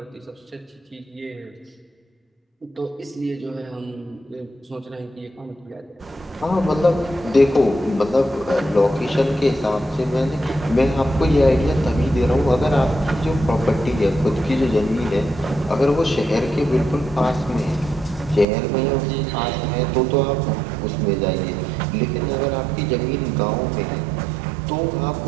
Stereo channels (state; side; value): drops out; left; at 18.4 s